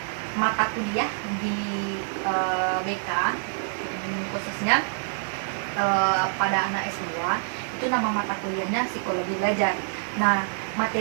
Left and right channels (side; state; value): left; silent; digital silence